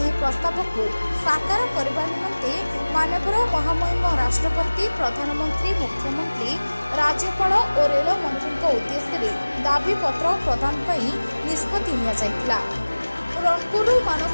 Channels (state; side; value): inverted; both; correlation -1.00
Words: प्रस्ताव को साकार करने निमंते माननीय महामहिम राष्ट्रपति, प्रधानमंत्री, मुख्यमंत्री, राज्यपाल और रेल मंत्री उद्देश्य दाबी पत्र प्रदान निष्पत्ति निया जायतिला। रणपुर मानस